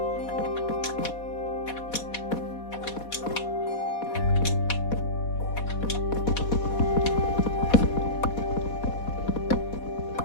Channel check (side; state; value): right; late; 4.1 ms